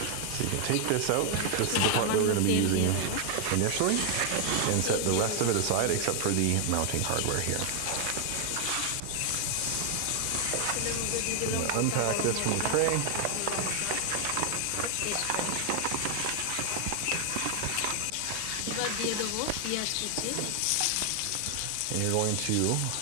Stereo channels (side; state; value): both; different; correlation 0.00